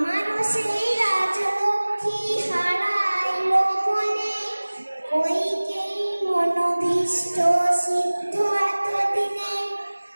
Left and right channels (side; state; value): both; inverted; correlation -1.00